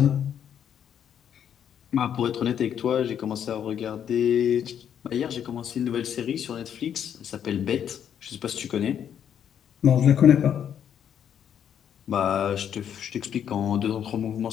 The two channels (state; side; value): quieter; right; 9.0 dB